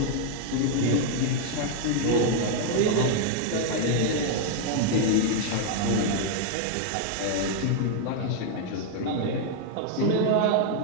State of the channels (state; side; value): different; both; correlation 0.00